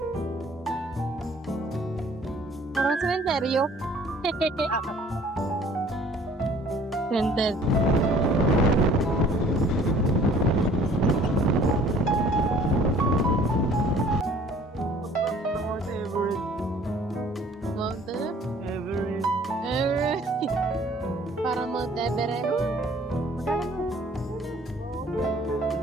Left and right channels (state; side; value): normal; both; correlation 0.54